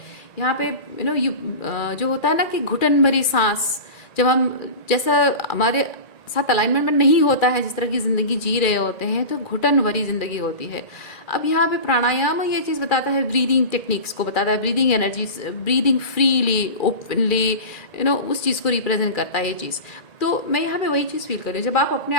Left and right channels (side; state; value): right; late; 2.4 ms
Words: यहाँ पे। जो होता है ना कि घुटन भरी सांस, जब हम जैसा हमारे साथ अलाइनमेंट में नहीं होता है, जिस तरह की ज़िंदगी जी रहे होते हैं, तो घुटन भरी ज़िंदगी होती है। अब यहाँ पे प्राणायाम ये चीज़ बताता है, ब्रीदिंग टेक्निक्स को बताता है, breathing energy, breathing freely, openly, उस चीज़ को रिप्रेजेंट करता है ये चीज़। तो मैं यहाँ पे वही चीज़ फील कर रही हूँ, जब आप अपने